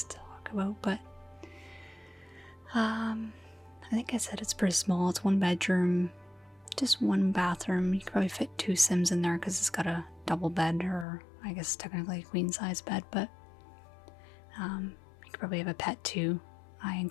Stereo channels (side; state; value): right; drops out; at 11.1 s